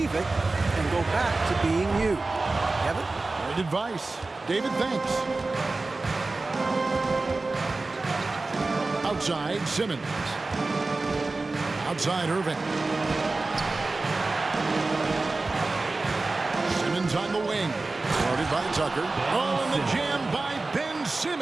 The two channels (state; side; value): quieter; left; 3.4 dB